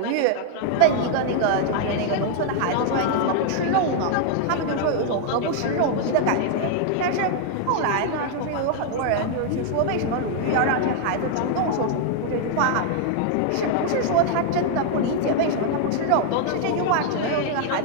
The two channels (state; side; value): different; both; correlation 0.00